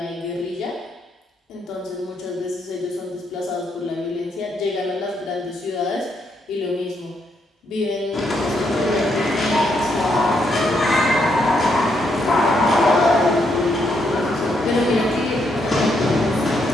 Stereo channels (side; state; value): both; normal; correlation 0.77